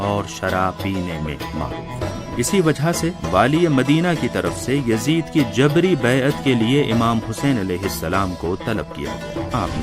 और शराब पीने में मारूफ। इसी वजह से वाली मदीना की तरफ से यजीद की जबरी बैअत के लिए इमाम हुसैन अलैहिस्सलाम को तलब किया गया।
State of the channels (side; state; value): both; identical; correlation 1.00